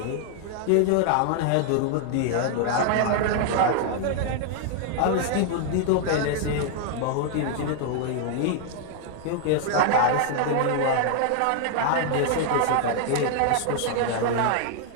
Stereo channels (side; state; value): both; different; correlation 0.00